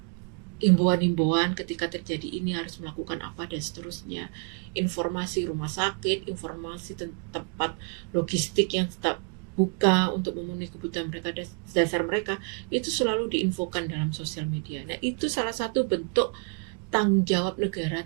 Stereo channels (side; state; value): left; quieter; 38.4 dB